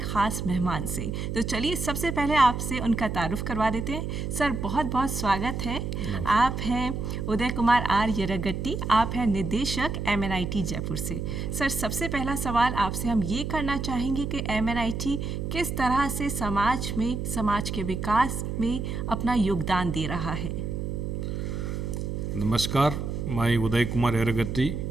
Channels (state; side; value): noise; right; hum, 3 dB below the sound